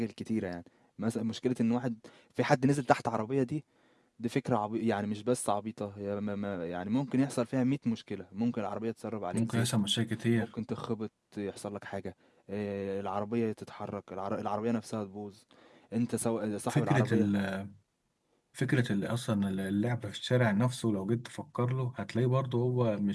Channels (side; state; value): both; identical; correlation 1.00